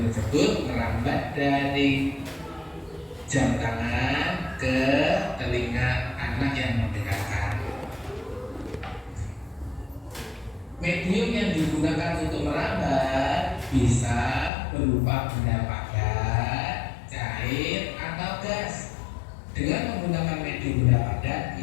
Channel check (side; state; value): right; drops out; at 14.5 s